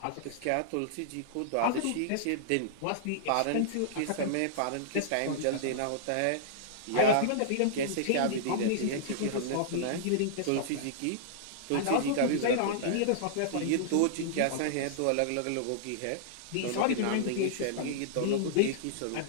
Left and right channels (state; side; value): different; both; correlation -0.02